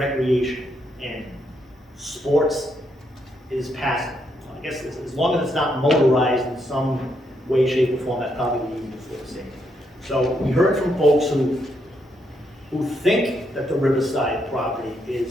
And sports is passive. I guess as long as it's not motorized in some way, shape, or form, that's probably the easiest way to say it. So we heard from folks who think that the Riverside property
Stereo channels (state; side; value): normal; both; correlation 0.78